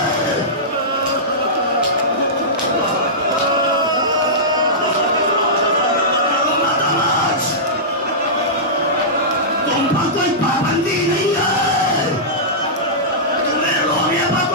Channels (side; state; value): both; normal; correlation -0.16